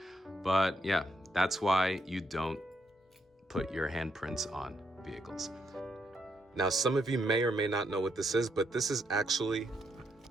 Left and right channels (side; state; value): both; normal; correlation 0.77